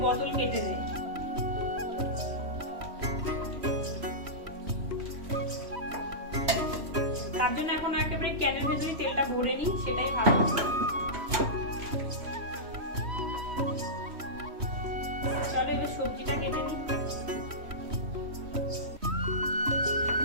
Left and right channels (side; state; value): left; late; 3.1 ms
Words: বোতল কেটে দেয়। তার জন্য এখন একেবারে ক্যানের ভেতরে তেলটা ভরে নিই, সেটাই ভালো। চলো এবার সবজিটা কেটে নিই।